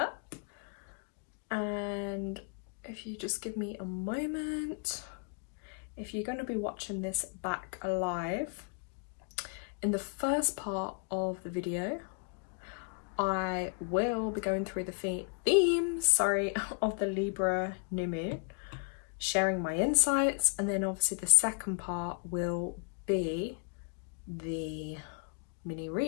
and if you just give me a moment, if you're going to be watching this back live, in the first part of the video I will be going through the themes of the Libra new moon, sharing my insights, and then obviously the second part will be the mini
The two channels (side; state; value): right; quieter; 39.8 dB